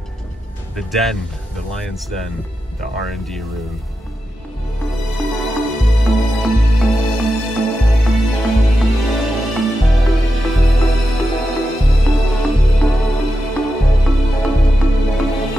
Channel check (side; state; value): both; normal; correlation 0.89